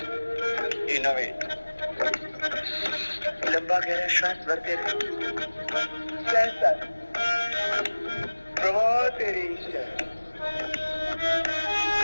innovate. लंबा गहरा श्वास भरते रहे। कैसा प्रभु तेरी इच्छा,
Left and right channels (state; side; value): inverted; both; correlation -1.00